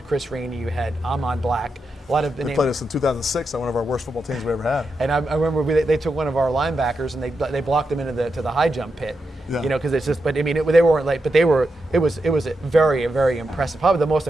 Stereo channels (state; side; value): normal; both; correlation 0.86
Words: Chris Rainey, you had Ahmad Black. A lot of they played us in 2006 on one of our worst football teams we ever had. And I remember they took one of our linebackers and they blocked him into the high jump pit. Yeah. Because it's just. But I mean, they weren't late. But it was a very, very impressive. Probably the most